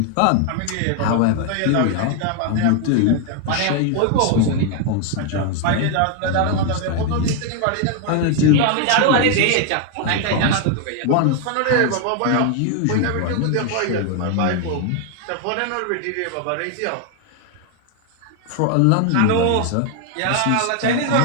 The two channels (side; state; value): both; different; correlation 0.00